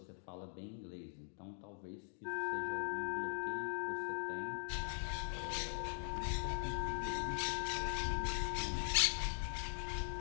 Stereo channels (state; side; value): silent; right; digital silence